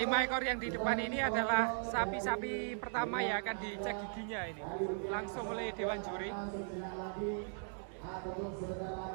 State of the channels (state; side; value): silent; left; digital silence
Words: ekor yang di depan ini adalah sapi-sapi pertama yang akan dicek giginya ini langsung oleh Dewan Juri.